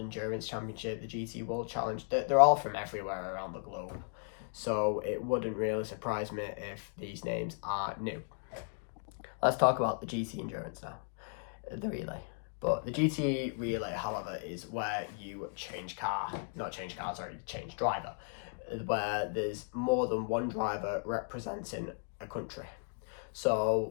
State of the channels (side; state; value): right; silent; 54 dB below the other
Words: Championship, the GT World Challenge. They're all from everywhere around the globe, so it wouldn't really surprise me if these names are new. Let's talk about the GT Endurance now. the relay. But the GT relay, however, is where you change driver, where there's more than one driver representing a country.